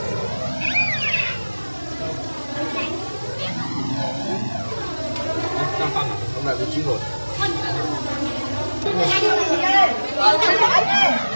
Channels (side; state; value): both; inverted; correlation -1.00